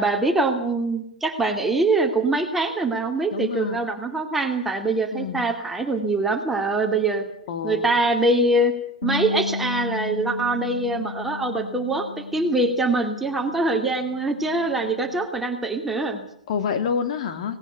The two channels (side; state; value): both; normal; correlation 0.39